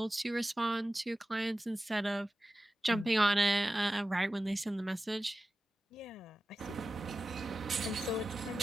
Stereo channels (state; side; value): normal; both; correlation 0.94